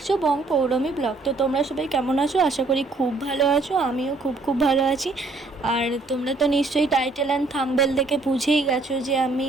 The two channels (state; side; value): quieter; left; 3.5 dB